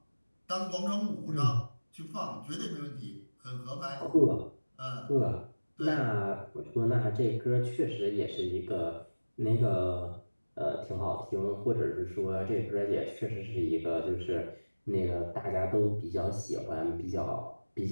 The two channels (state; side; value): inverted; both; correlation -1.00